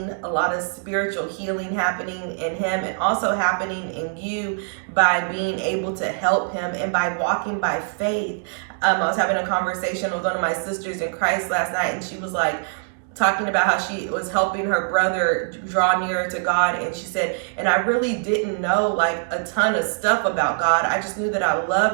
a lot of spiritual healing happening in him and also happening in you by being able to help him and by walking by faith. I was having a conversation with one of my sisters in Christ last night, and she was like, talking about how she was helping her brother draw nearer to God. And she said, and I really didn't know like a ton of stuff about God. I just knew that I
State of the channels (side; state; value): left; silent; digital silence